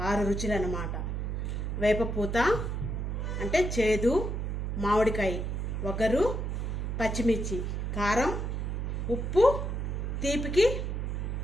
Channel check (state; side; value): noise; right; hum, 2 dB below the sound